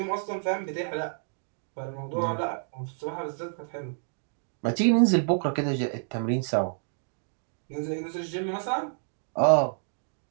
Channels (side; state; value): left; silent; digital silence